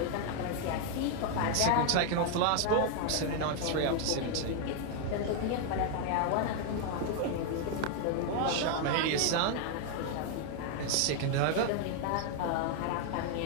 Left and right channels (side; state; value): both; different; correlation 0.00